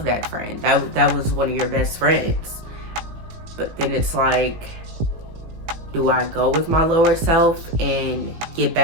that friend. That was one of your best friends. But then it's like, do I go with my lower self and get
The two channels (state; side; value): late; left; 18 ms